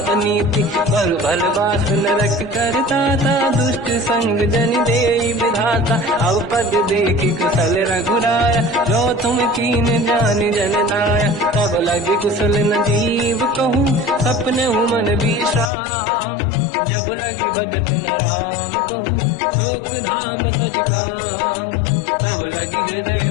अनीति, पर भल बास नरक करता था, दुष्ट संग जन देई विधाता, अब पद देखि कुशल रघुराया, जो तुम कीन जान जन नाया, तब लगे कुशल न जीव कहूँ, सपने मन विश्राम, जब लगे भजत न राम कहूँ, शोक धाम तज काम, तब लगी हृदय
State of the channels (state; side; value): drops out; right; at 15.7 s